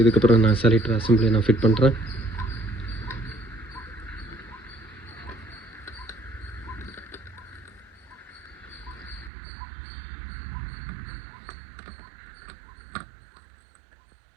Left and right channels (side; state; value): left; drops out; at 9.3 s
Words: இதுக்கப்புறம் நான் செலக்டர் அசம்பிளி நான் ஃபிட் பண்ணுறேன்.